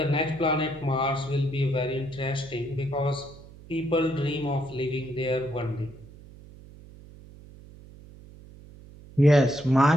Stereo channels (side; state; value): right; noise; hum, 20 dB below the sound